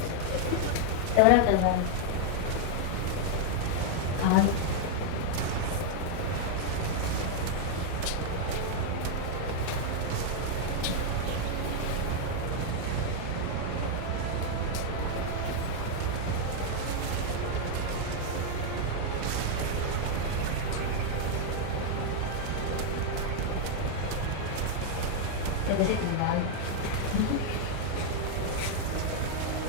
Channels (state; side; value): different; both; correlation 0.00